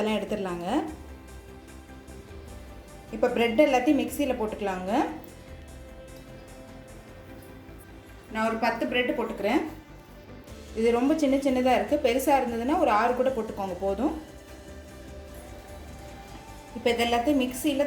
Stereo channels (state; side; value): identical; both; correlation 1.00